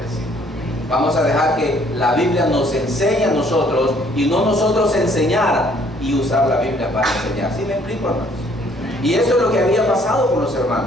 Vamos a dejar que la Biblia nos enseñe a nosotros y no nosotros enseñar y usar la Biblia para enseñar. ¿Sí me explico, hermanos? Y eso es lo que había pasado con los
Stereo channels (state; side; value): normal; both; correlation 0.62